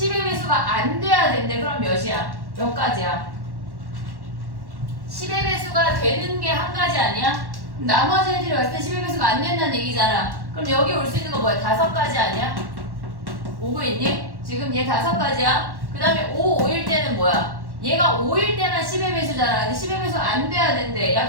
배수가 안 돼야 된대. 그럼 몇이야? 몇 가지야? 10의 배수가 되는 게 한 가지 아니야? 나머지 애들이 왔을 때 10의 배수가 안 된다는 얘기잖아. 그럼 여기 올 수 있는 거 뭐야? 5가지 아니야? 오고 있니? 지금 얘 5가지야. 그 다음에 5, 5일 때는 뭐야? 얘가 5일 때만 10의 배수잖아. 근데 10의 배수 안 돼야 된대. 야,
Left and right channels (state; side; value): late; left; 1.1 ms